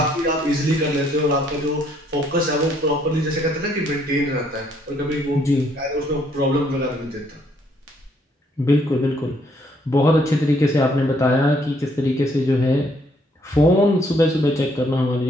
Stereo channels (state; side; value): normal; both; correlation 0.68